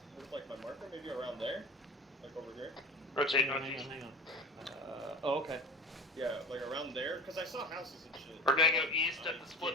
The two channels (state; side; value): normal; both; correlation 0.34